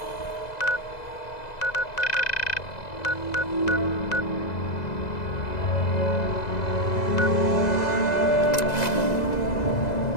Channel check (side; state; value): right; late; 2.0 ms